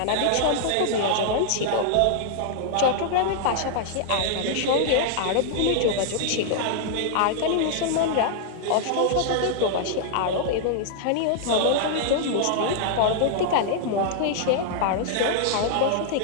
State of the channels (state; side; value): different; both; correlation -0.01